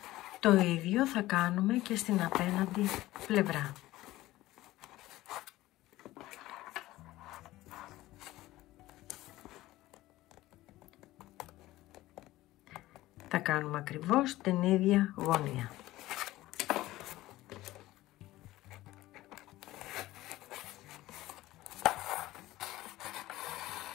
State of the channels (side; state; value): right; quieter; 16.9 dB